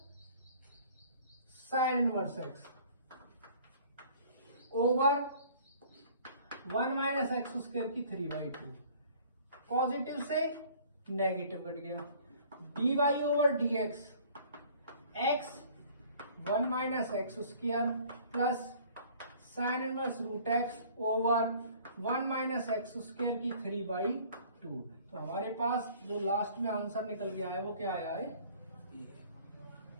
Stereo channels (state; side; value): inverted; both; correlation -0.52